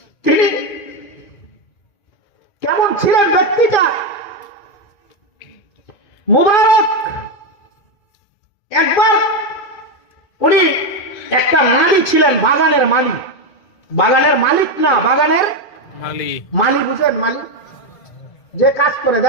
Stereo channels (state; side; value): late; right; 2.5 ms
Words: তিনি কেমন ছিলেন ব্যক্তিটা? মুবারক একবার উনি একটা মালি ছিলেন, বাগানের মালি। বাগানের মালিক না, বাগানের মালি, বুঝলেন? মালি যে কাজ করে,